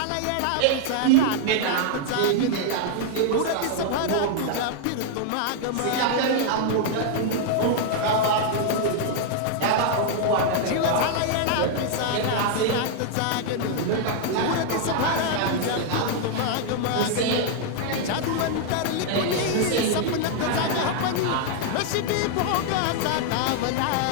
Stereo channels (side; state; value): both; different; correlation 0.00